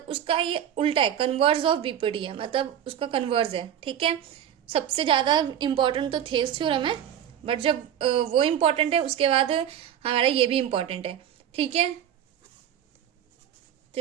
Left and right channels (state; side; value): quieter; left; 9.9 dB